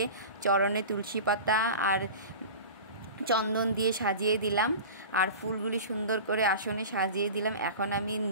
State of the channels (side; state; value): both; inverted; correlation -0.34